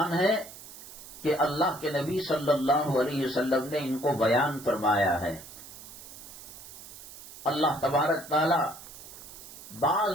ہے کہ اللہ کے نبی صلی اللہ علیہ وسلم نے ان کو بیان فرمایا ہے۔ اللہ تبارک تعالی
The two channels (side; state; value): right; noise; hiss, 15 dB below the sound